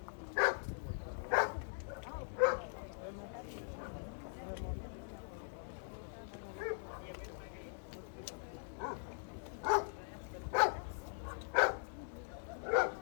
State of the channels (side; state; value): right; silent; digital silence